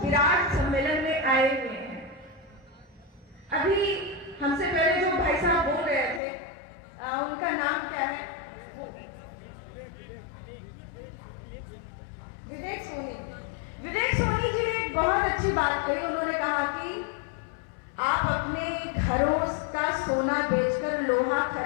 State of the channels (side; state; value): right; drops out; at 6.2 s